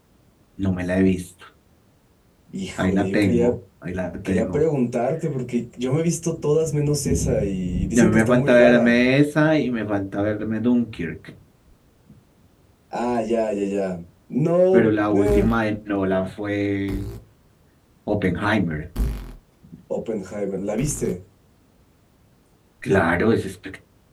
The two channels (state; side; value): identical; both; correlation 1.00